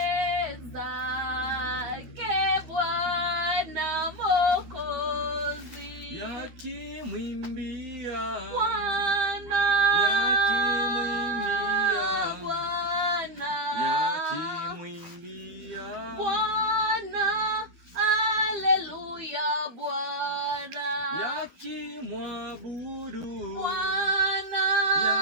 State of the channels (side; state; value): left; late; 13 ms